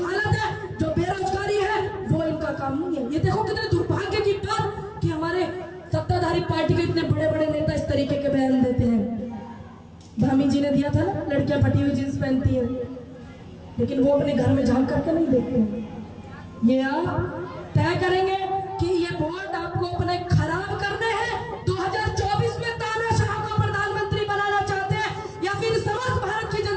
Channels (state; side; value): identical; both; correlation 1.00